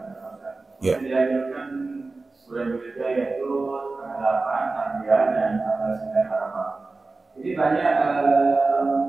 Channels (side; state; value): left; quieter; 3.6 dB